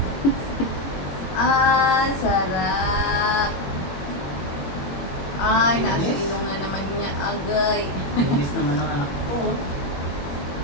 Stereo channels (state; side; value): late; right; 21 ms